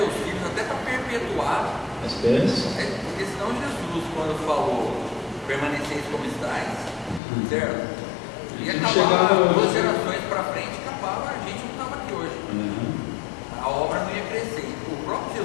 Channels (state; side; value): drops out; right; at 7.2 s